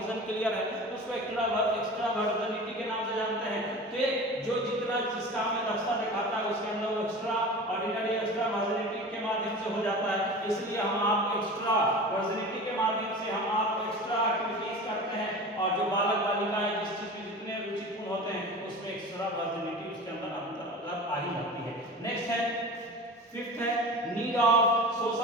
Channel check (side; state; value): both; normal; correlation 0.34